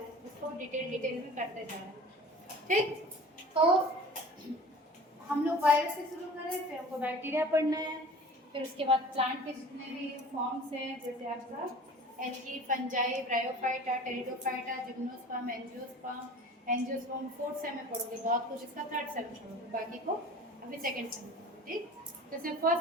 उसको डिटेल में करते जा रहे हैं। ठीक, तो हम लोग वायरस से शुरू करें, फिर हमको बैक्टीरिया पढ़ना है, फिर उसके बाद प्लांट के जितने भी फॉर्म्स हैं, जैसे आपका algae, fungi, bryophyta, pteridophyta, gymnosperm, angiosperm fourth same में पढ़ोगे बहुत कुछ, इसका थर्ड सेम में पढ़ोगे, बाकी को अभी सेकेंड सेम में। ठीक, जैसे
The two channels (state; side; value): normal; both; correlation 0.42